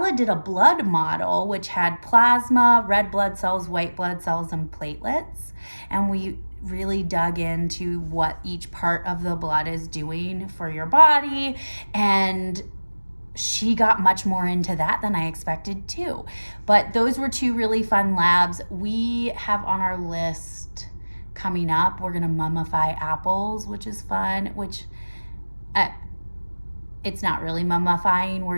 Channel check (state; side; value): inverted; both; correlation -1.00